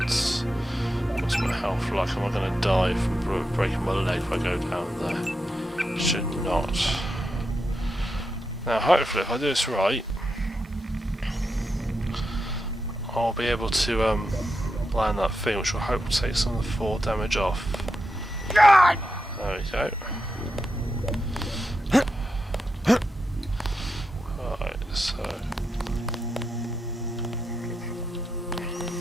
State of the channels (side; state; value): both; normal; correlation 0.86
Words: What's my health like? Am I going to die from breaking my leg if I go down there? Should not. Now, hopefully, if I do this right, I'll be able to land that thing, which will hopefully take some of the 4 damage off. There we go. Right, so.